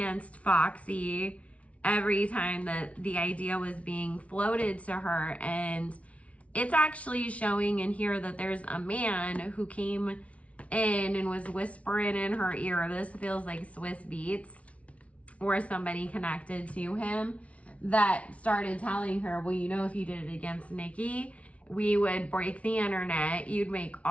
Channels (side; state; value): right; late; 0.064 ms